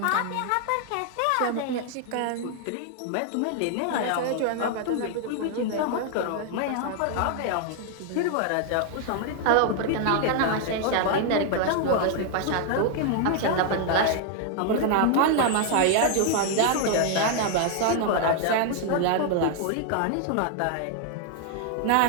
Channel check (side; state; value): both; different; correlation 0.00